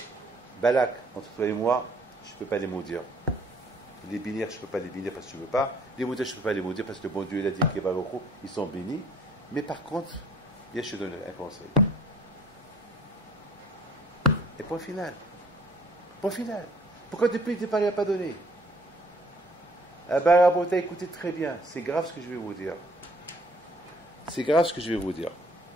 Balak, entre toi et moi, je ne peux pas les maudire. Les bénir, je ne peux pas les bénir parce que tu ne veux pas. Les maudire, je ne peux pas les maudire parce que le bon Dieu, il a dit que Baruch Hu, ils sont bénis. Mais par contre, viens, je te donne un conseil. Et point final. Pourquoi depuis le départ, il n'a pas donné? Ah ben, Rabota, écoutez très bien. C'est grave ce que je vais vous dire.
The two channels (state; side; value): normal; both; correlation 0.58